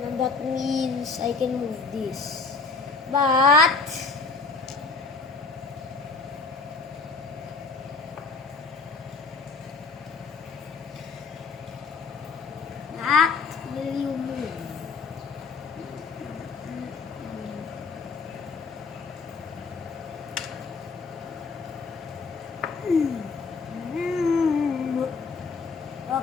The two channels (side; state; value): right; quieter; 4.3 dB